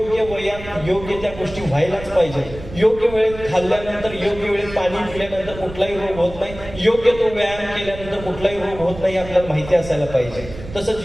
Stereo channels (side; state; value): right; noise; rumble, 14 dB below the sound